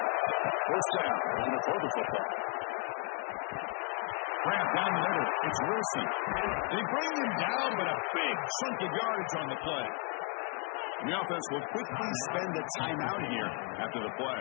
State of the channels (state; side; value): quieter; right; 34.2 dB